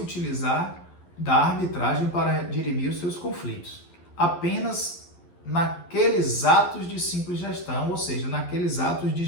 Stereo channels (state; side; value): late; right; 11 ms